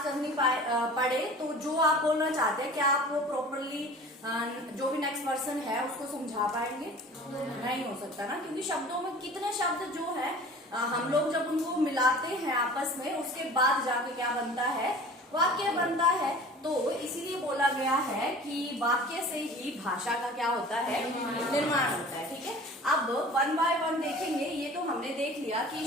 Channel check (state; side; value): normal; both; correlation 0.43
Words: करनी पड़े तो जो आप बोलना चाहते हैं, क्या आप वो प्रॉपरली जो भी नेक्स्ट पर्सन है उसको समझा पाएंगे? नहीं हो सकता ना, क्योंकि शब्दों में कितने शब्द जो है हम लोग जब उनको मिलाते हैं आपस में, उसके बाद जाके क्या बनता है? वाक्य बनता है। तो इसीलिए बोला गया है कि वाक्य से ही भाषा का क्या होता है? निर्माण होता है। ठीक है, अब वन बाय वन देखेंगे। ये तो हमने देख लिया कि